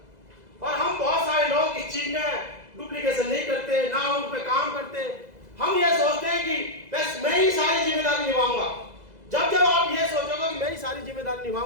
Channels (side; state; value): left; late; 2.0 ms